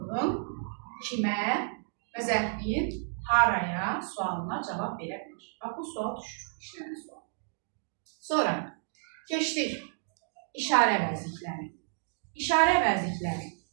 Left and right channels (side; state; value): left; silent; digital silence